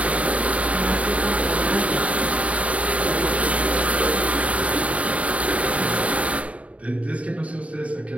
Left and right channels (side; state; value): left; late; 0.066 ms